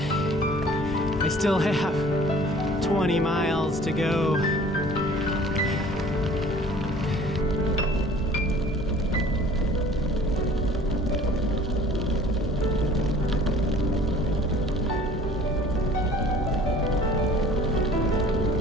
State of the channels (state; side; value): normal; both; correlation 0.50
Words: I still have 20 miles to go.